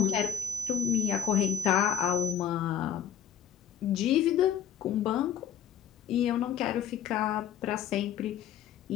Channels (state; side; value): quieter; right; 8.9 dB